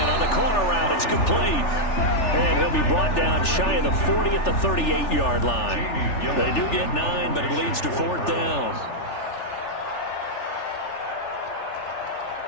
on the corner route. It's complete. And he'll be brought down shy of the 40 at the 38-yard line. They do get 9, but it leads to 4th down.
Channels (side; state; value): right; late; 3.4 ms